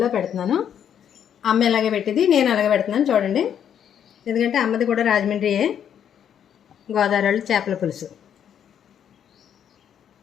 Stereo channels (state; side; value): quieter; right; 9.0 dB